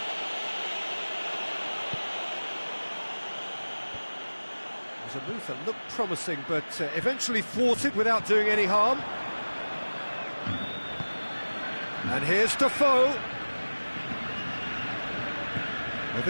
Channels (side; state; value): both; inverted; correlation -1.00